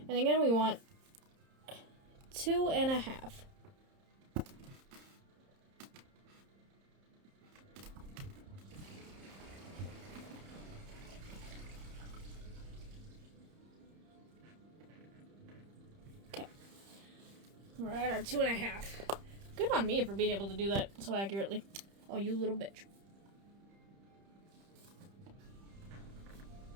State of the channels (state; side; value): late; left; 30 ms